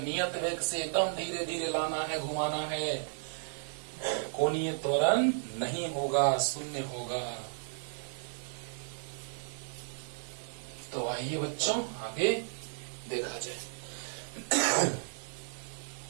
नियत वेग से एकदम धीरे धीरे लाना है, घुमाना है, कोणीय त्वरण नहीं होगा, शून्य होगा। तो आइए बच्चों आगे देखा जाए।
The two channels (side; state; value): left; silent; digital silence